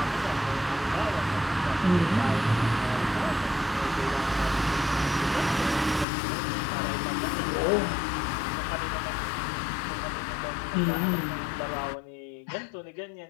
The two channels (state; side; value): drops out; right; at 6.1 s